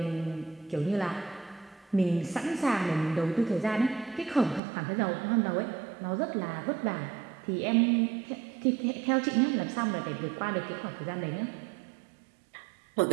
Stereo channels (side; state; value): left; drops out; at 4.6 s